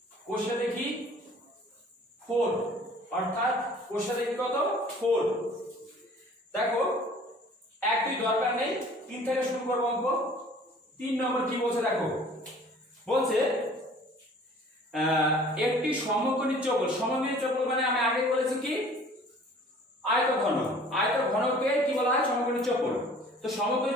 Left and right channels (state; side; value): normal; both; correlation 0.50